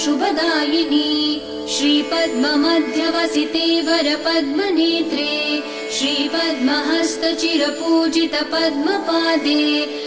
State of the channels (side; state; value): both; identical; correlation 1.00